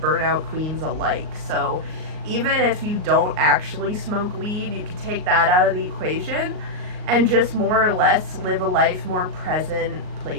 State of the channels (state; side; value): late; left; 38 ms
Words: queens alike. So even if you don't actually smoke weed, you can take that out of the equation and just more or less live a life more present,